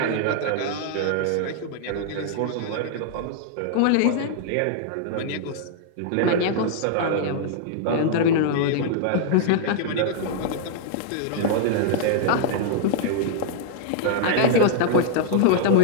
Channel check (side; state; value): both; different; correlation -0.01